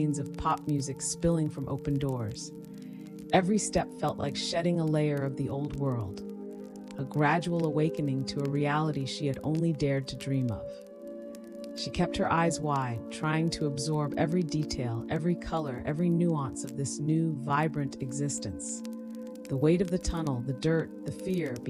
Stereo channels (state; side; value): identical; both; correlation 1.00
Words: of pop music spilling from open doors. Every step felt like shedding a layer of the old world, a gradual awakening to a reality she had only dared to dream of. She kept her eyes wide, trying to absorb every detail, every color, every nuance of this new, vibrant existence. The weight of the tunnel, the dirt, the fear